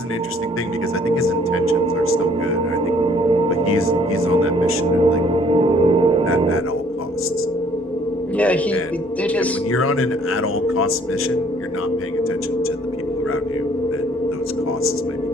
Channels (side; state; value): both; normal; correlation 0.60